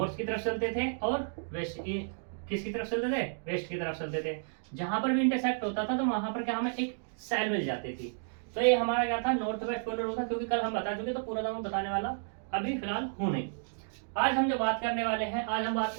की तरफ चलते थे और वेस्ट की, किसकी तरफ चलते थे? वेस्ट की तरफ चलते थे। जहां पर भी इंटरसेक्ट होता था तो वहां पर क्या हमें एक सेल मिल जाती थी। तो ये हमारा क्या था? नॉर्थ वेस्ट कॉर्नर रूल था। क्योंकि कल हम बता चुके तो पूरा मैं बताने वाला अभी फिलहाल हूं नहीं। आज हम जो बात करने वाले हैं, आज हम बात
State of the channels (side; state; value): left; silent; digital silence